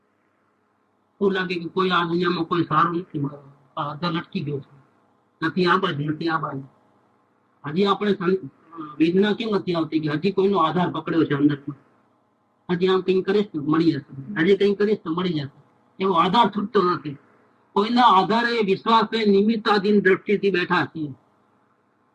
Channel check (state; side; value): identical; both; correlation 1.00